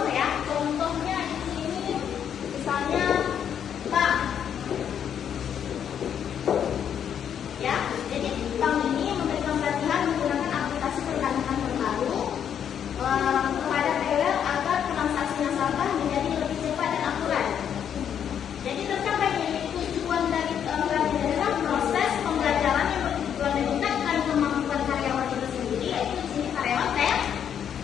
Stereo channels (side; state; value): right; quieter; 8.7 dB